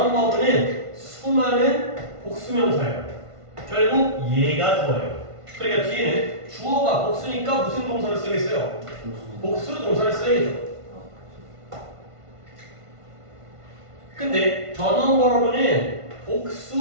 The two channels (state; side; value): late; left; 1.5 ms